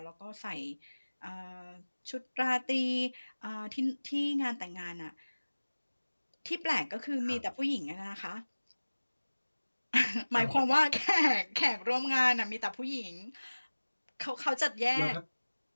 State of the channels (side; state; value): both; inverted; correlation -1.00